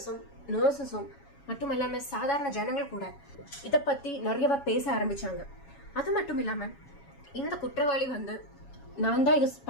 நர்சஸும் மட்டும் இல்லாம சாதாரண ஜனங்கள் கூட இதை பத்தி நிறையவா பேச ஆரம்பிச்சாங்க. அது மட்டும் இல்லாம இந்த குற்றவாளி வந்து நான் தான் இது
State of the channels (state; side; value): late; right; 7.2 ms